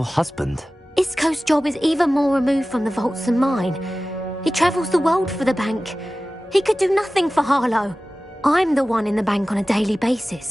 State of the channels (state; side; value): normal; both; correlation 0.96